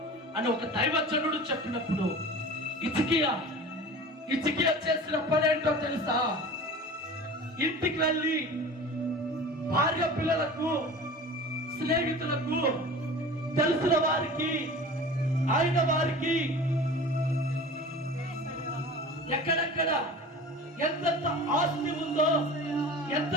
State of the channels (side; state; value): both; normal; correlation 0.38